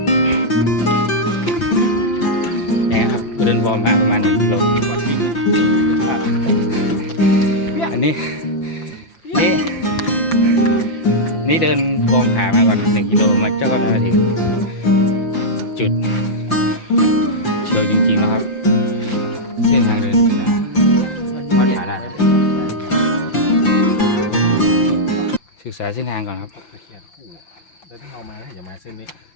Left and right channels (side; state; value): right; late; 5.8 ms